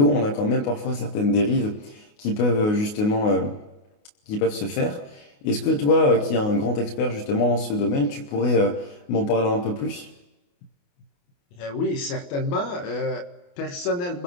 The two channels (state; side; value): late; right; 28 ms